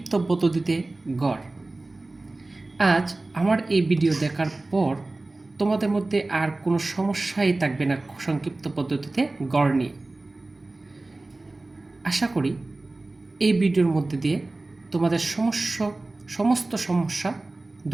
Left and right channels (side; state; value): left; quieter; 3.0 dB